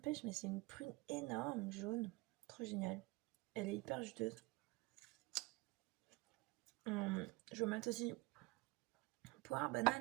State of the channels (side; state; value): left; quieter; 22.5 dB